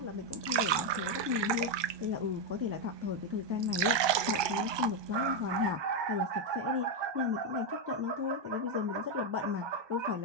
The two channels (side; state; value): left; late; 1.2 ms